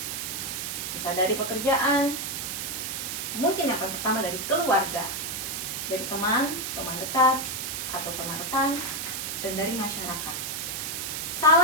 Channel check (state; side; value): noise; right; hiss, 4 dB below the sound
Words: Bisa dari pekerjaan, mungkin yang pertama dari keluarga, dari teman dekat, atau teman rekan, dan dari masyarakat.